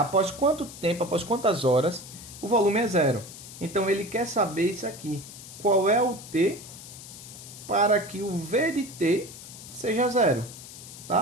quanto tempo, após quantas horas, o volume é zero? Então, ele quer saber isso aqui. Qual é o T para que o V de T seja zero?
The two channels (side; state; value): left; noise; hiss, 15 dB below the sound